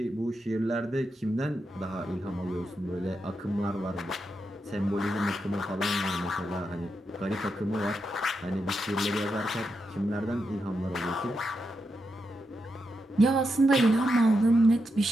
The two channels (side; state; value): both; normal; correlation 0.85